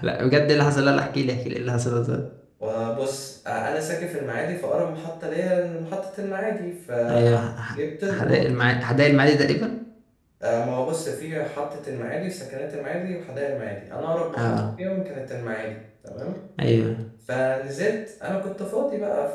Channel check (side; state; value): both; identical; correlation 1.00